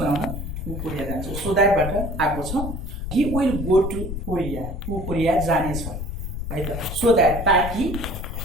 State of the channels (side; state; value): left; noise; rumble, 6 dB below the sound